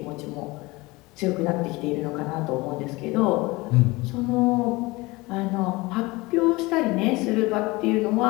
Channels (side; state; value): right; quieter; 22.5 dB